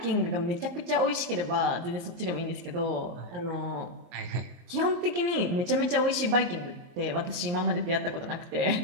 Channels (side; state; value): left; late; 23 ms